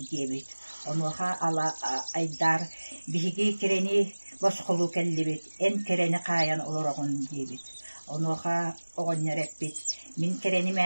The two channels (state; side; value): inverted; both; correlation -1.00